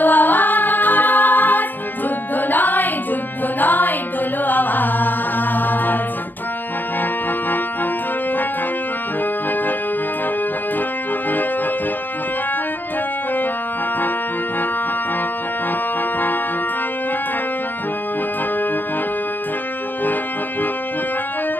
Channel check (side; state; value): right; late; 0.091 ms